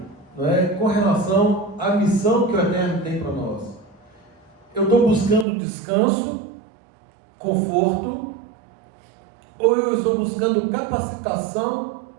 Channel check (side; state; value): left; drops out; at 5.5 s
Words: com relação à missão que o Eterno tem para nós. Eu estou buscando descanso, conforto, ou eu estou buscando capacitação